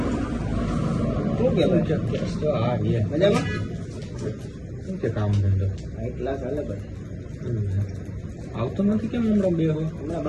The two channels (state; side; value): identical; both; correlation 1.00